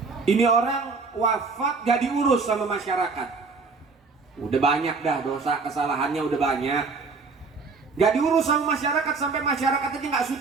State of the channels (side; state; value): left; quieter; 4.4 dB